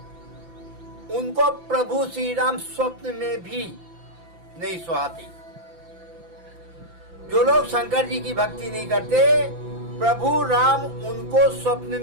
उनको प्रभु श्री राम स्वप्न में भी नहीं सुहाते। जो लोग शंकर जी की भक्ति नहीं करते, प्रभु राम उनको स्वप्न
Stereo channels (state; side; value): late; left; 5.9 ms